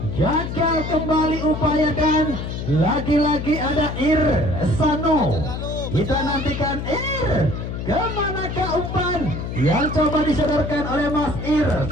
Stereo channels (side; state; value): left; noise; hum, 5 dB below the sound